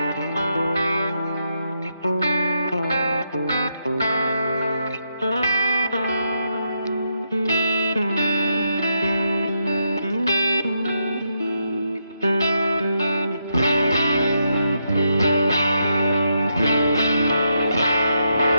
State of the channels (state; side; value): inverted; both; correlation -0.81